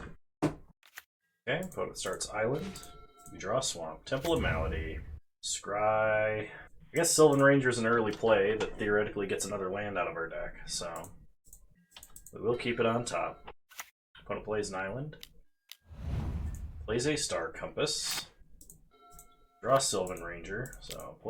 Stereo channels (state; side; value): identical; both; correlation 1.00